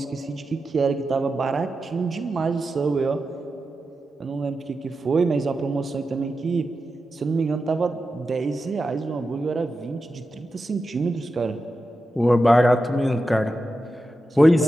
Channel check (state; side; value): normal; both; correlation 0.90